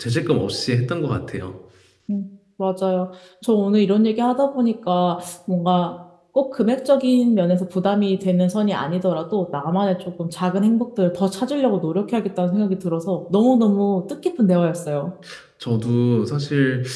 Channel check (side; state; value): both; identical; correlation 1.00